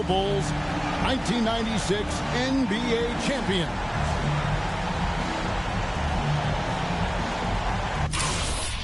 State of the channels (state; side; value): identical; both; correlation 1.00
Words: Bulls, 1996 NBA champion.